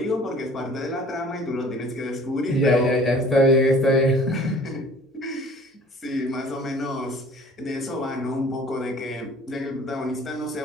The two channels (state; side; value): normal; both; correlation 0.49